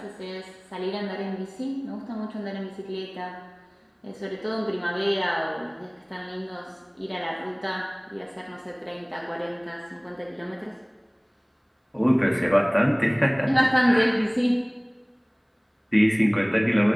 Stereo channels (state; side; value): identical; both; correlation 1.00